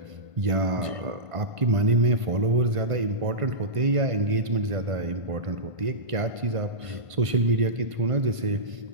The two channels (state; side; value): late; left; 1.5 ms